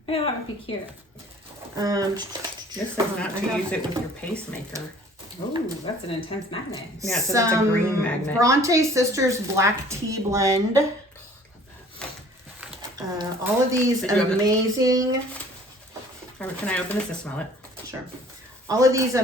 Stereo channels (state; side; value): normal; both; correlation 0.52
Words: Yeah, that would be cute. This is not to use it with your pacemaker. Ooh, that's an intense magnet. Yeah, it says it's a green magnet. Bronte Sisters Black Tea Blend. All of these Did you have it? amazing Can I open this to smell it? Sure. All of these